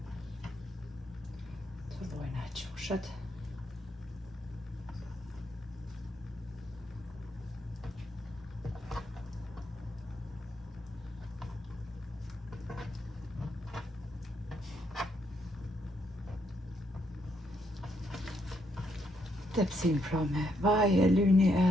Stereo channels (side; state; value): both; normal; correlation 0.76